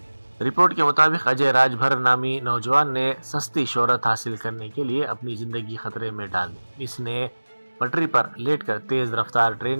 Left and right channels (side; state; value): both; inverted; correlation -1.00